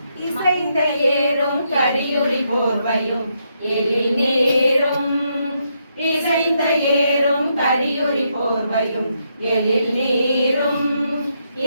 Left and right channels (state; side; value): inverted; both; correlation -0.78